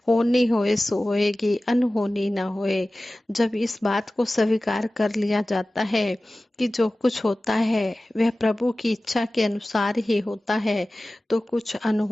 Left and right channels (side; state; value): both; normal; correlation 0.97